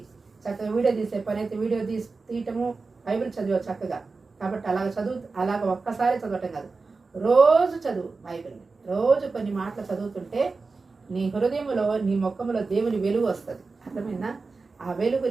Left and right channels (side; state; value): left; quieter; 4.1 dB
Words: చక్కగా వీడియో తీసే పని అయితే వీడియో తీయటము, బైబిల్ చదివే చక్కగా. కాబట్టి అలాగ ఒక్కసారి చదవటం కాదు, రోజు చదువు బైబిల్ని. రోజు కొన్ని మాటలు చదువుతుంటే నీ హృదయంలో, నీ ముఖంలో దేవుని వెలుగు వస్తుంది. అర్థమైందా? ఆ వెలుగు